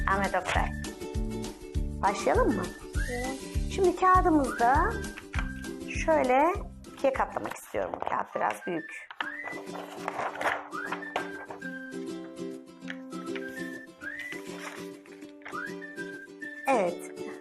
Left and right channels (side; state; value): both; identical; correlation 1.00